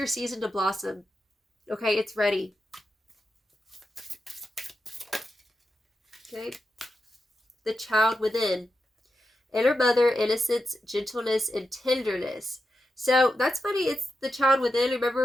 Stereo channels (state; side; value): normal; both; correlation 0.89